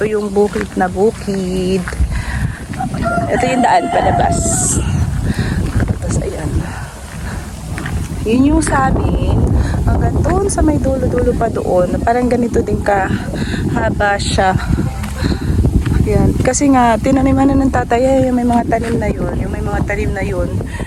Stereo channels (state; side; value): identical; both; correlation 1.00